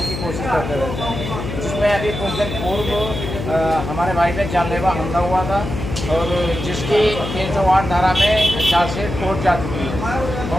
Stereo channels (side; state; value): left; noise; hum, 6 dB below the sound